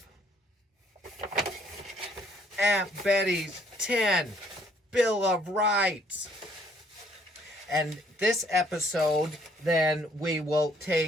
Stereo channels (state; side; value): normal; both; correlation 0.64